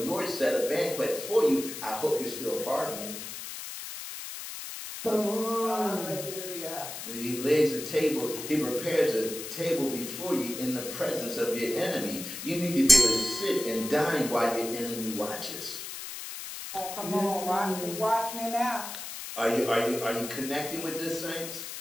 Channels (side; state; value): left; noise; hiss, 8 dB below the sound